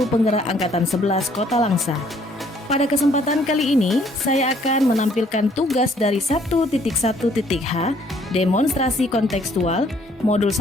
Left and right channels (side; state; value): both; normal; correlation 0.63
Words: penggerak angkatan 11 Kota Langsa. Pada kesempatan kali ini, saya akan menampilkan tugas dari 1.1.h demonstrasi kontekstual modul